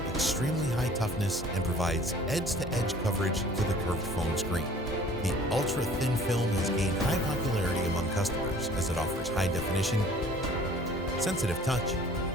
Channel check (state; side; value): normal; both; correlation 0.51